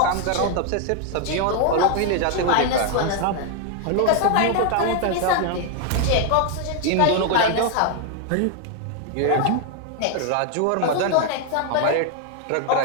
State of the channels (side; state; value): both; different; correlation 0.00